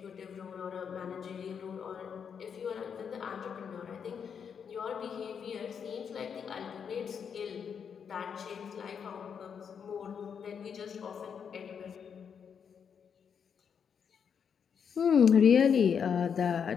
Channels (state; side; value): quieter; right; 7.1 dB